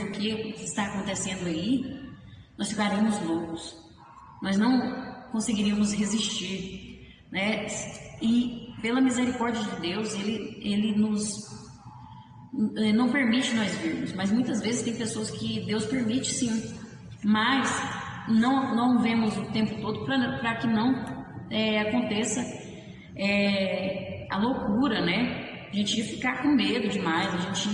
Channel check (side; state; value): both; identical; correlation 1.00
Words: o que está acontecendo aí, nós ficaríamos loucos. Nós não conseguiríamos resistir, né? E pela misericórdia de Deus, ele não permite nós vermos. Mas muitas vezes tem pessoas que Deus permite sim, mas não vemos o tempo todo para que não aconteça a loucura, né? A gente ia ficar com medo demais, a